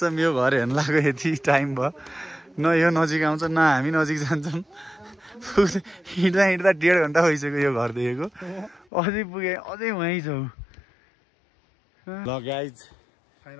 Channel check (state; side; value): drops out; right; at 8.8 s